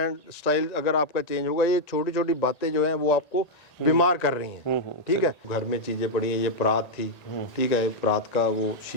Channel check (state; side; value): late; right; 1.9 ms